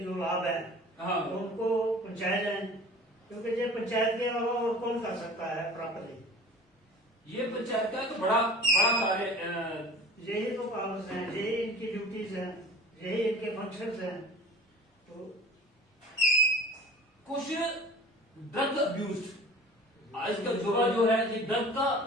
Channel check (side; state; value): both; normal; correlation 0.42